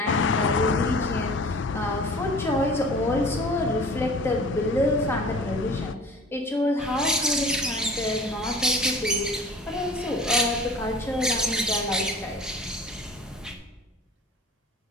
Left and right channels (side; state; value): both; normal; correlation 0.43